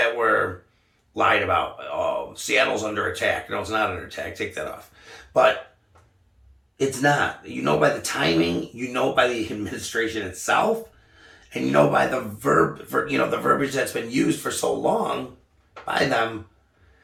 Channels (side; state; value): both; identical; correlation 1.00